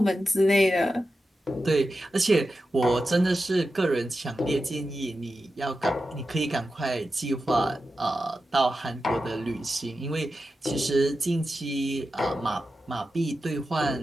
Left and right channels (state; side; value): normal; both; correlation 0.91